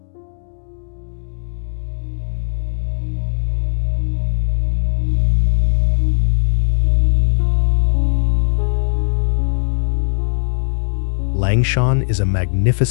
Langshan is a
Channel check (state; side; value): silent; right; digital silence